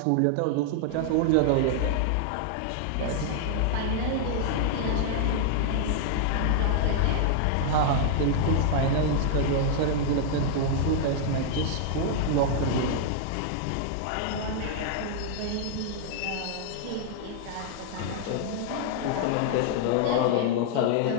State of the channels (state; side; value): different; both; correlation -0.01